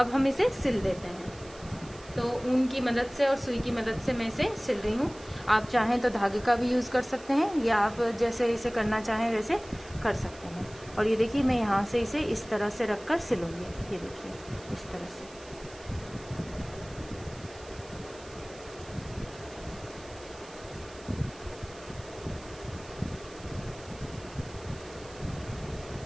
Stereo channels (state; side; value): noise; right; hiss, 20 dB below the sound